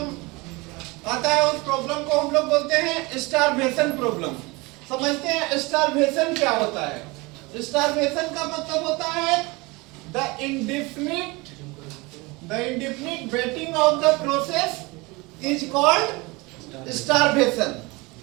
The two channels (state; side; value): quieter; left; 24.8 dB